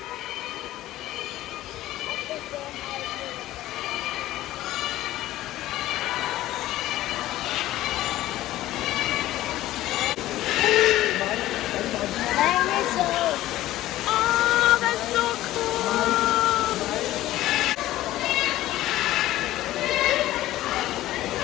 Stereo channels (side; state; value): right; quieter; 15.2 dB